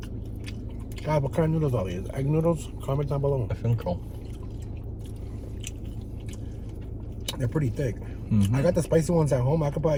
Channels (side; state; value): both; identical; correlation 1.00